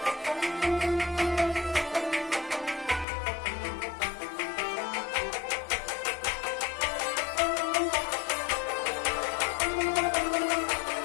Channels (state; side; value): drops out; right; at 3.1 s